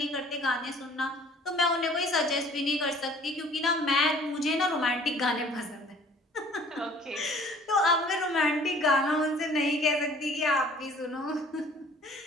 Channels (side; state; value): both; normal; correlation 0.53